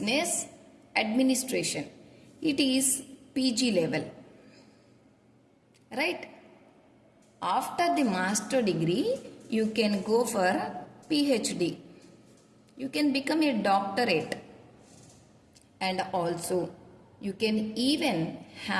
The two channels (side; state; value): both; identical; correlation 1.00